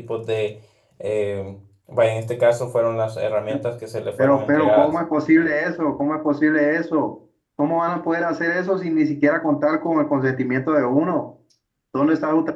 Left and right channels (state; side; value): identical; both; correlation 1.00